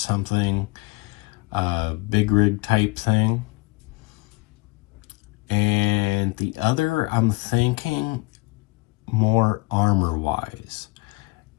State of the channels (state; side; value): quieter; right; 24.4 dB